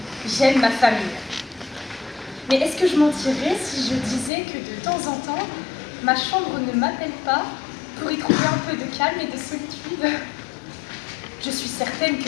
j'aime ma famille. Mais est-ce que je mentirais si je disais que de temps en temps, ma chambre ne m'appelle pas pour y trouver un peu de calme et de solitude? Je suis certaine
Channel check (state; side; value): drops out; right; at 4.3 s